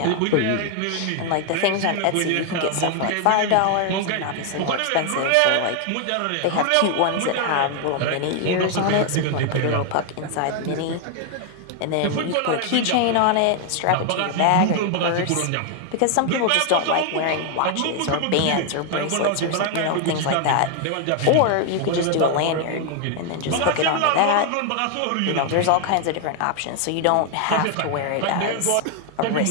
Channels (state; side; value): different; both; correlation 0.00